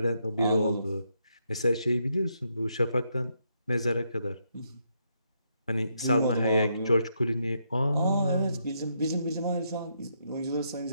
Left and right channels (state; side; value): inverted; both; correlation -0.78